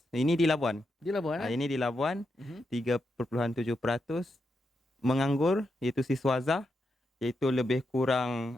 ini di Labuan. di Labuan, Ini di Labuan, Mhm. 3.7% menganggur, iaitu siswaza, iaitu lebih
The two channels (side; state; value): both; normal; correlation 0.84